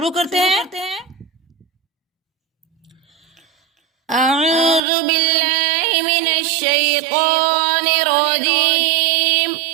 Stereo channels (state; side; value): drops out; left; at 4.8 s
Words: करते हैं। अऊज़ु बिल्लाहि मिनश शैतानिर रजीम।